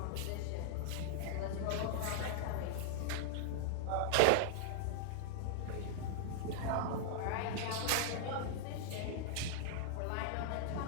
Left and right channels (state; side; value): different; both; correlation -0.01